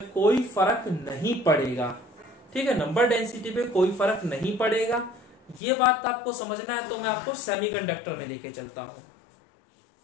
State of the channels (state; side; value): drops out; right; at 5.6 s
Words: कोई फर्क नहीं पड़ेगा। ठीक है, नंबर डेंसिटी पे कोई फर्क नहीं पड़ेगा। ये बात आपको समझना है तो मैं आपको सेमीकंडक्टर में लेके चलता हूं।